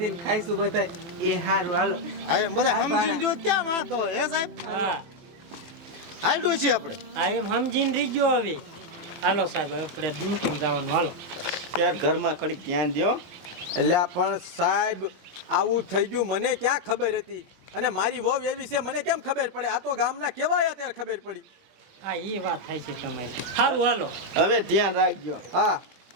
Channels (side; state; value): left; late; 23 ms